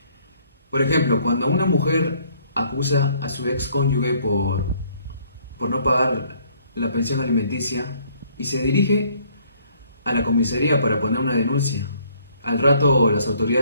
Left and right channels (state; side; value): inverted; both; correlation -0.63